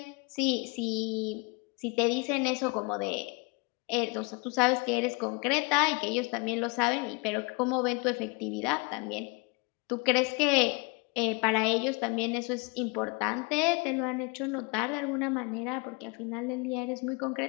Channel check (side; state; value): right; quieter; 29.9 dB